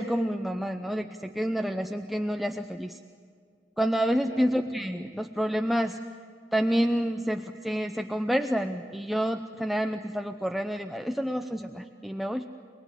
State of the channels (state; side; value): normal; both; correlation 0.94